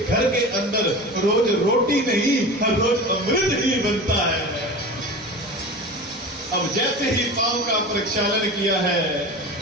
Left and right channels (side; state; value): both; normal; correlation 0.32